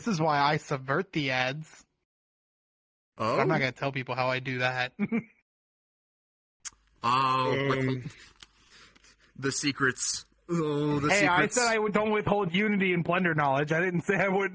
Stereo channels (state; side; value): identical; both; correlation 1.00